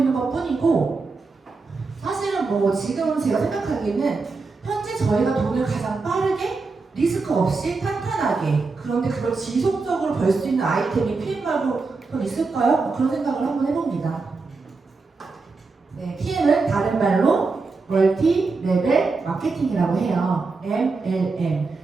것 뿐이고 사실은 지금 제가 생각하기에는 현재 저희가 돈을 가장 빠르게 리스크 없이 탄탄하게 그런데 그걸 지속적으로 벌 수 있는 아이템이 PM 말고 더 있을까요? 그런 생각을 한번 해봅니다. 네, PM은 다른 말로 멀티 레벨 마케팅이라고 해요. MLM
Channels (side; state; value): left; quieter; 4.1 dB